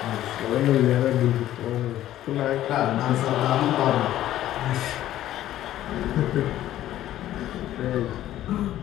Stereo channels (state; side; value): quieter; right; 13.2 dB